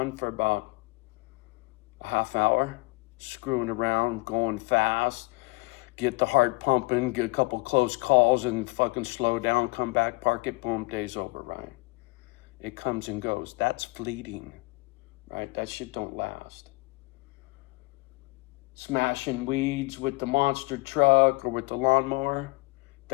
for about a half hour, screwing around, going fast, get the heart pumping, get a couple close calls and fucking slow down, come back, park it, boom, day's over, right? It comes and goes. That's fleeting, right? That shit don't last. Smashing weeds with the monster truck or with the lawnmower,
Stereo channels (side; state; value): right; quieter; 25.3 dB